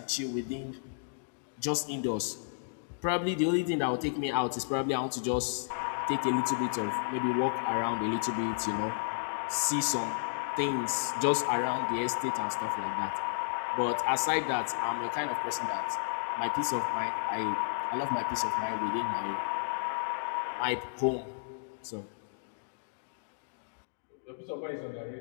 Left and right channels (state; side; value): silent; right; digital silence